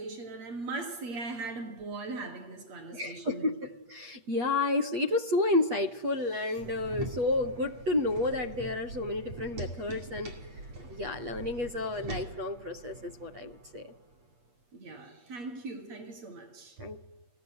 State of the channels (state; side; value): late; left; 8.4 ms